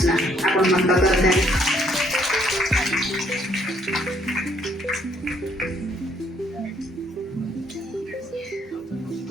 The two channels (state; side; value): normal; both; correlation 0.66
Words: आपण मन करते